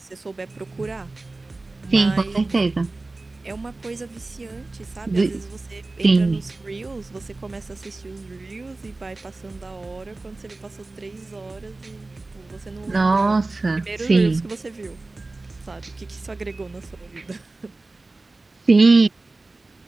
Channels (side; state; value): left; quieter; 3.2 dB